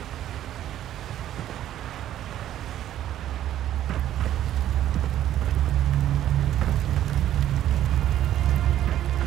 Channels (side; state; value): left; quieter; 12.0 dB